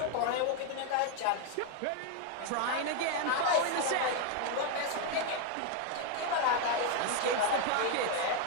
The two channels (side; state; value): both; different; correlation 0.00